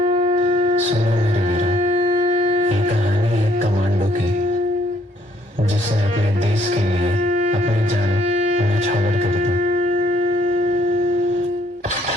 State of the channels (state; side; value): normal; both; correlation 0.66